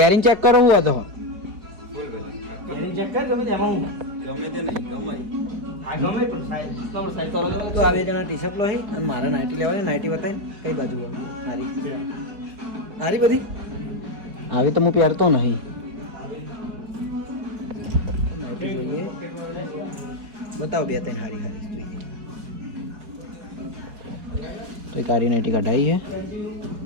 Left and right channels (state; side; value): late; left; 4.9 ms